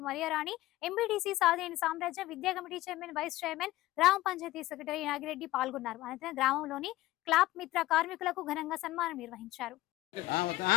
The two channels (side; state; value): right; quieter; 16.9 dB